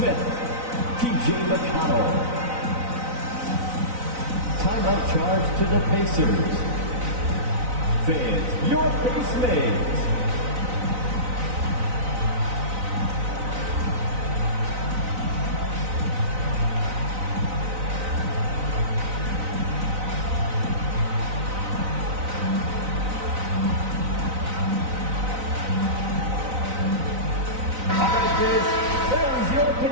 TJ McConnell. Timeout charge to the Pacers. Fans, your base mates. All right, fans, there's your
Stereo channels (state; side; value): late; left; 4.0 ms